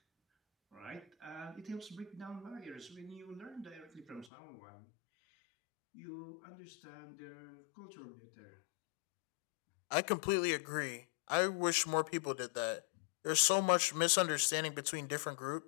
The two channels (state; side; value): drops out; right; at 4.3 s